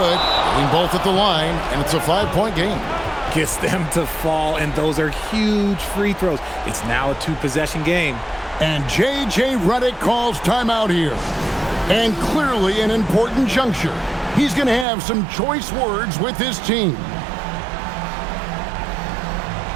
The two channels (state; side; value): drops out; left; at 14.9 s